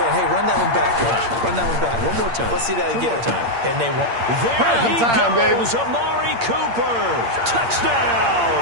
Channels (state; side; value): late; left; 8.7 ms